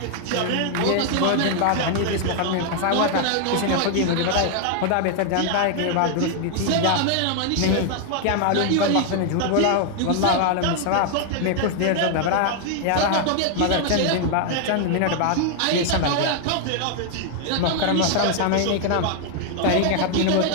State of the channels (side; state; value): both; different; correlation 0.00